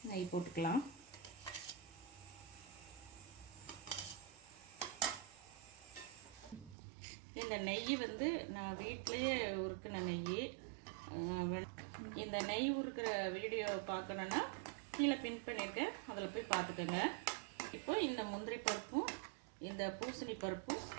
நெய் போட்டுக்கலாம். இந்த நெய் நான் வீட்டிலையே உருக்கின நெய். இந்த நெய் உருக்கிற வீடியோ பார்க்கணுன்னா கீழே பின் பண்ணியிருக்கேன், அதில் போய் பார்த்துக்கோங்க. இப்போ இந்த முந்திரி பருப்பும் இந்த பூசணி பருப்பும்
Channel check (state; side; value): drops out; left; at 6.8 s